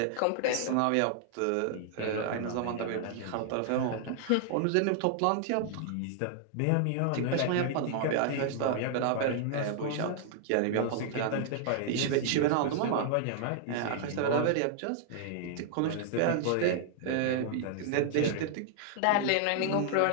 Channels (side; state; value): both; different; correlation -0.01